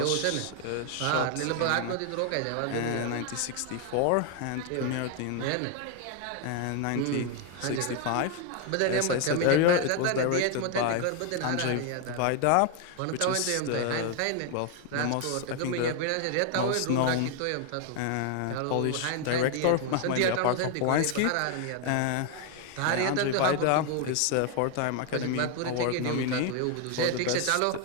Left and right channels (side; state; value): both; different; correlation 0.01